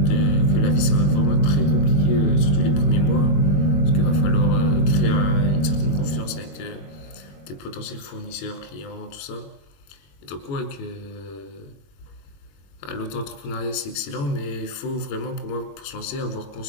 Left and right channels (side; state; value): right; late; 21 ms